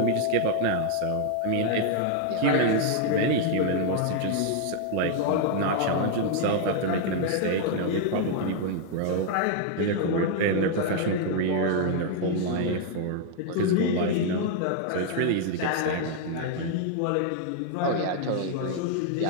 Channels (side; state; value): both; different; correlation 0.00